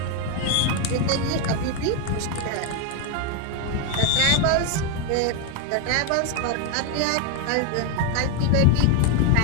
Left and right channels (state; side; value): different; both; correlation 0.01